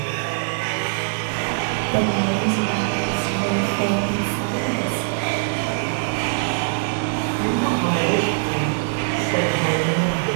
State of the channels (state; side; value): silent; left; 64 dB below the other